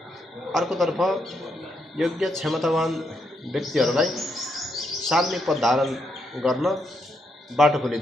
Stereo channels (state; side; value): normal; both; correlation 0.78